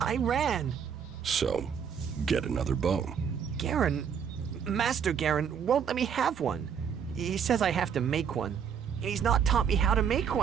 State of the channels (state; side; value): quieter; left; 7.5 dB